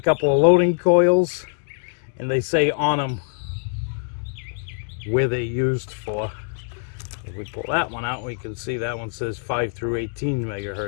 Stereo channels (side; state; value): right; silent; digital silence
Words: of loading coils, and they say on them where they're used for. If we pull that one out, we can see that one says 5 through 18